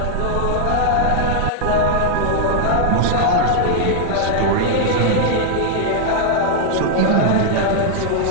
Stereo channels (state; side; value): different; both; correlation -0.01